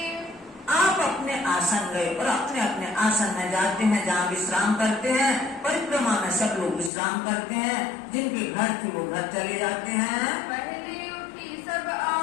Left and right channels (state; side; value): drops out; right; at 6.9 s